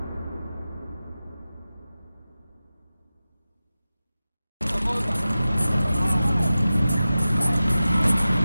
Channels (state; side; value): inverted; both; correlation -0.95